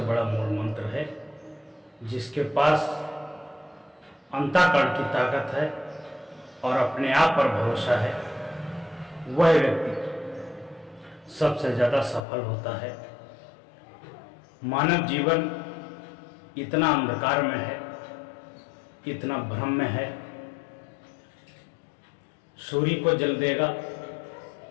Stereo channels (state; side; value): drops out; right; at 12.2 s